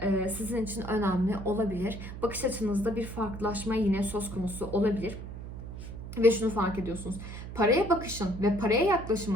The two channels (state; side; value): noise; right; hum, 10 dB below the sound